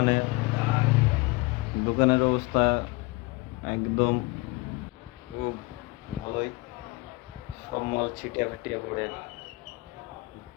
দোকানের অবস্থা একদম খুব ভালোই। সব মাল ছিটিয়ে ফাটিয়ে পড়ে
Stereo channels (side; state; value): right; quieter; 23.7 dB